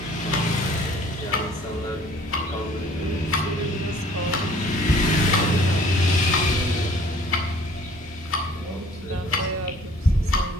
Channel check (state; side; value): normal; both; correlation 0.54